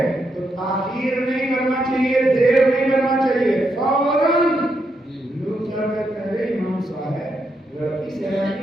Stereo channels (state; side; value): normal; both; correlation 0.81